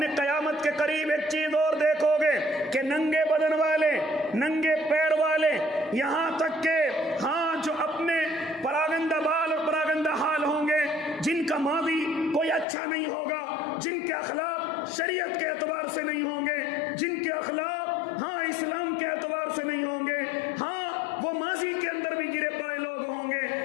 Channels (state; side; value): drops out; right; at 12.7 s